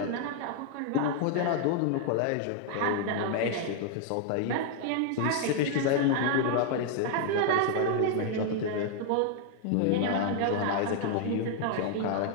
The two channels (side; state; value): both; different; correlation 0.00